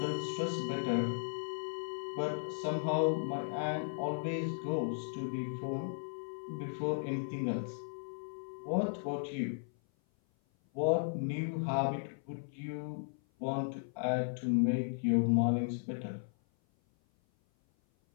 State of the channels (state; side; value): silent; right; 54 dB below the other